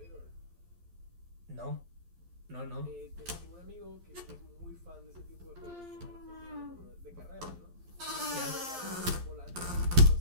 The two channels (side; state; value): left; late; 11 ms